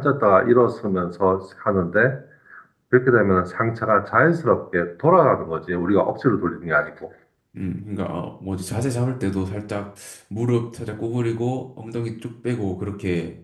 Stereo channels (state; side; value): identical; both; correlation 1.00